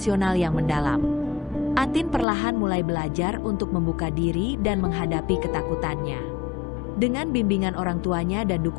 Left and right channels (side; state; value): right; drops out; at 2.2 s